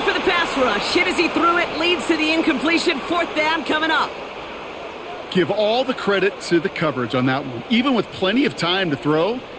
for the pass rush. Hit as he threw it, leads to the incompletion. Fourth down coming up. Give all the credit to the coverage on that one. Even with plenty of time to throw,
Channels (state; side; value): identical; both; correlation 1.00